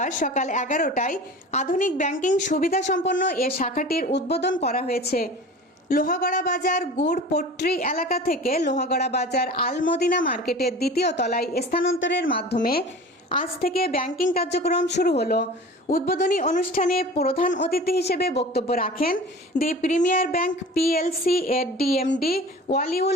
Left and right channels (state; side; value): normal; both; correlation 0.39